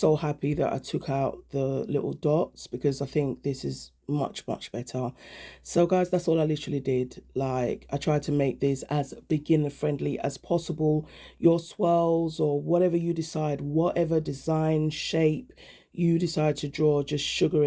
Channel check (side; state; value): both; identical; correlation 1.00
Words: happy that I took out the little dots because I think this is much better. So guys, that's all I literally did. Like, I tried to make this as beginner friendly as possible. Your swirls or whatever you decide, whatever design, shape you decide to draw, just sugar